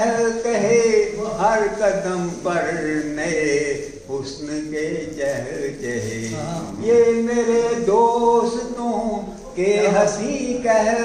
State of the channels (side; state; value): both; identical; correlation 1.00